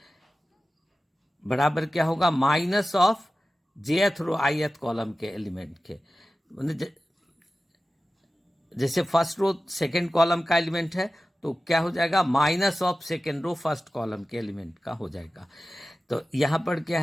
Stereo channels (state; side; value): normal; both; correlation 0.95